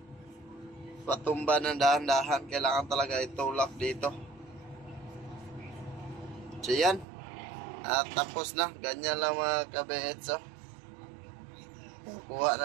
patumba ng dahan-dahan. Kailangan talaga itulak dito. So yan. At tapos na. Ganyan lang mga kabits. Kuha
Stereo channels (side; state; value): left; drops out; at 7.1 s